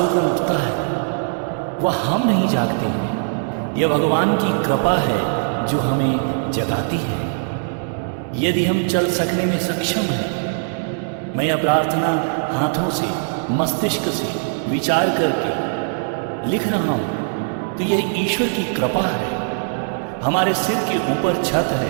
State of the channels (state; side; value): silent; left; 65 dB below the other